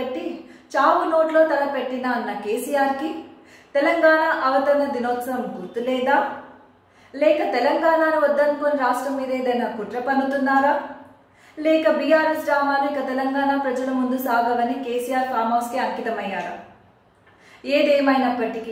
చావు నోట్లో తల పెట్టిన అన్న కేసీఆర్కి తెలంగాణ అవతరణ దినోత్సవం గుర్తులేదా? లేక తెలంగాణను వద్దనుకొని రాష్ట్రం మీద ఏదైనా కుట్ర పన్నుతున్నారా? లేక బీఆర్ఎస్ డ్రామాలు ఇక తెలంగాణ ప్రజల ముందు సాగవని కేసీఆర్ ఫామ్ హౌస్కి అంకితమయ్యారా?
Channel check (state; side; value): identical; both; correlation 1.00